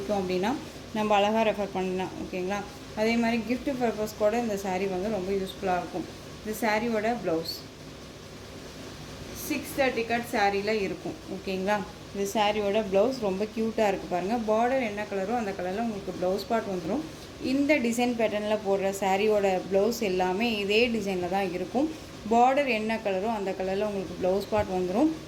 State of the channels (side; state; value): both; identical; correlation 1.00